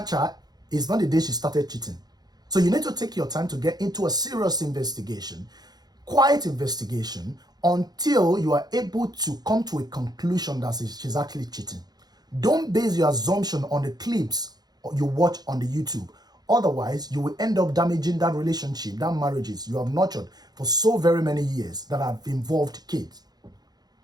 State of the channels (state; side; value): late; left; 0.19 ms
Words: her is not the day she started cheating. So you need to take your time to get into a serious investigation, quiet investigation, until you are able to come to a conclusion that she's actually cheating. Don't base your assumption on the clips you watch on the YouTube. Otherwise, you will end up damaging that relationship, that marriages you have nurtured for so very many years that have involved kids.